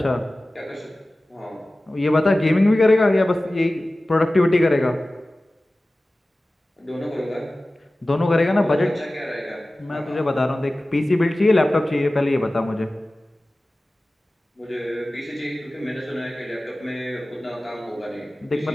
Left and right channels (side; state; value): both; normal; correlation 0.97